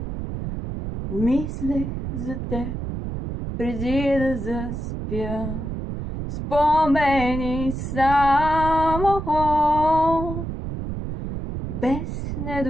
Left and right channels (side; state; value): right; noise; rumble, 5 dB below the sound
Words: мислех за теб преди да заспя. Спомени само, без